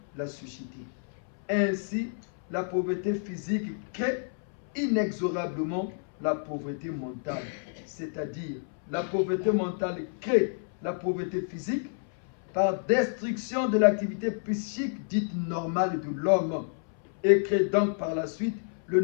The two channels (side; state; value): right; silent; 58 dB below the other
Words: la société. Ainsi, la pauvreté physique crée inexorablement la pauvreté mentale, c'est-à-dire la pauvreté mentale crée la pauvreté physique par destruction de l'activité psychique dite normale de l'homme et crée donc par la suite le